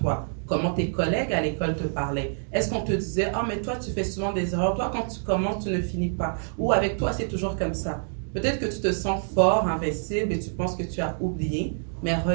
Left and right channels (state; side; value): silent; left; digital silence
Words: Comment tes collègues à l'école te parlaient? Est-ce qu'on te disait, ah, mais toi, tu fais souvent des erreurs. Toi, quand tu commences, tu ne finis pas. Ou avec toi, c'est toujours comme ça. Peut-être que tu te sens fort, invincible et tu penses que tu as oublié. Mais